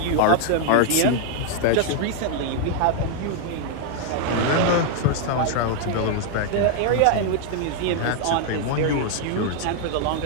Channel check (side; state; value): both; different; correlation 0.00